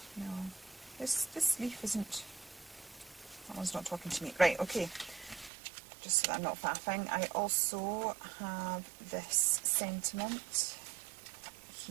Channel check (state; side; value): drops out; left; at 5.5 s